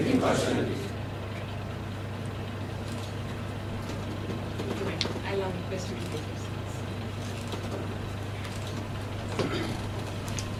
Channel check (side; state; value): both; identical; correlation 1.00